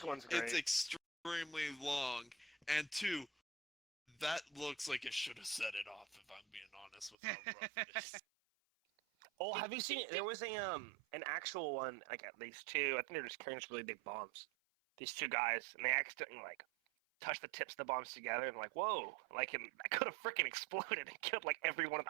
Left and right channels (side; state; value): left; drops out; at 7.2 s